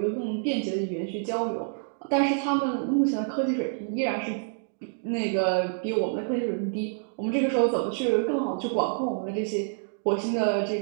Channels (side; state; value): left; silent; digital silence